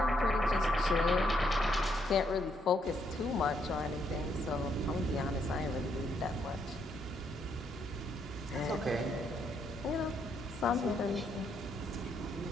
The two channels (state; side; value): normal; both; correlation 0.74